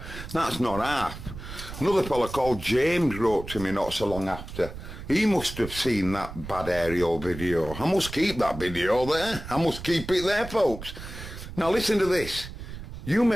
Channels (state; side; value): noise; right; rumble, 11 dB below the sound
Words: That's not half. Another fella called James wrote to me not so long after. He must have seen that bad aerial video. I must keep that video there. I must keep it there, folks. Now listen to this. You